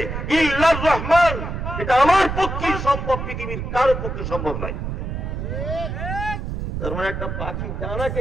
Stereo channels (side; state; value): right; noise; rumble, 4 dB below the sound